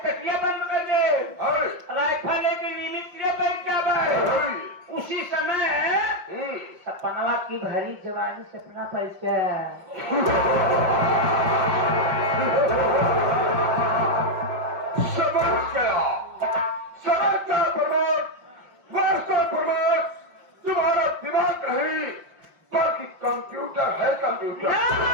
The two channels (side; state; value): left; late; 5.7 ms